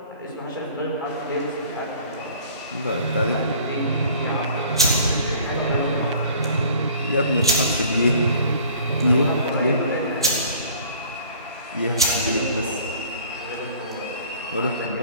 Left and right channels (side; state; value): both; inverted; correlation -0.50